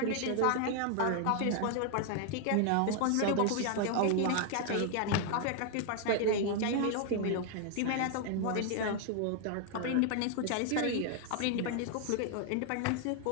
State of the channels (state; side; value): different; both; correlation 0.00